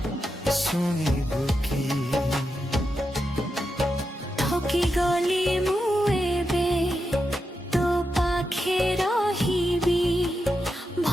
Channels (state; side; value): normal; both; correlation 0.87